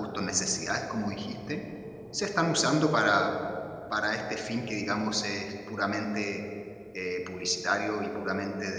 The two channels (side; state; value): both; identical; correlation 1.00